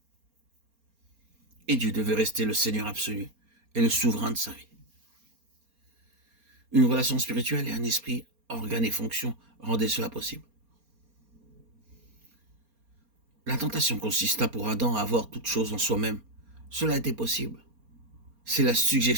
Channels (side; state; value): left; late; 4.3 ms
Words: Et Dieu devait rester le Seigneur absolu et le souverain de sa vie. Une relation spirituelle et un esprit, organe et fonction rendaient cela possible. La tentation consista pour Adam à avoir toute chose en soi-même. Cela était possible. C'est la